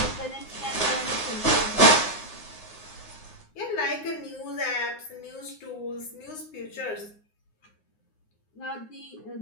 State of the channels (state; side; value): late; right; 9.6 ms